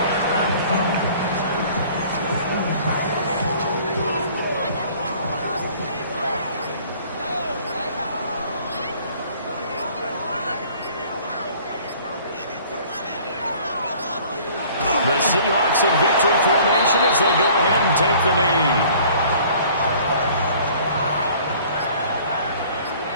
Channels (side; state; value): both; inverted; correlation -0.52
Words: The Seahawks in victory formation as they go ahead and take the knee.